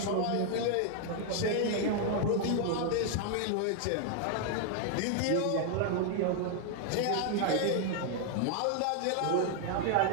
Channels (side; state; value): both; different; correlation 0.00